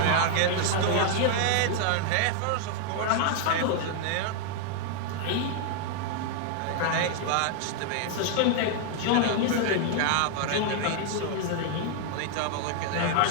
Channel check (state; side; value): different; both; correlation 0.00